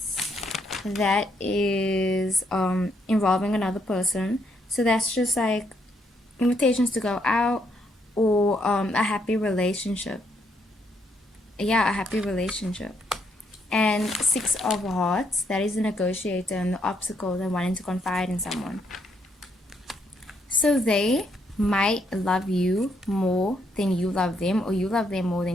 That is involving another person. So that's just like invitations to go out, or a happy relationship. Yeah, a happy relationship. And Six of Hearts, that is the negotiator and the obstacle and wanting to confide in someone. So they might love you more than you love them, or you love them more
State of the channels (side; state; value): both; normal; correlation 0.74